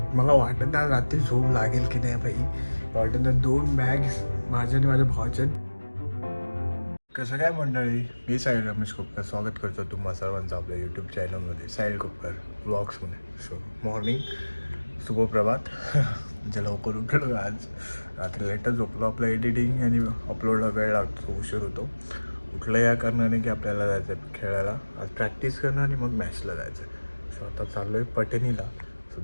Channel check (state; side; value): inverted; both; correlation -1.00